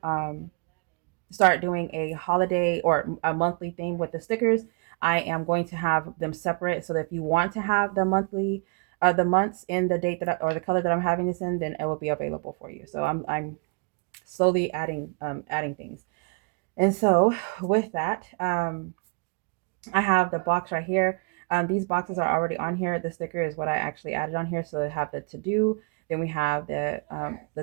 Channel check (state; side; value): quieter; left; 33.8 dB